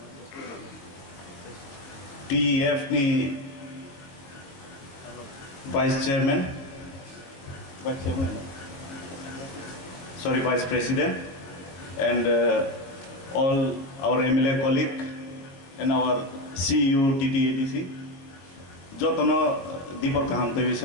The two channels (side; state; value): right; late; 22 ms